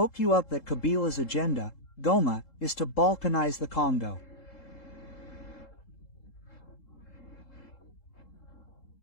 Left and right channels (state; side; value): late; right; 3.7 ms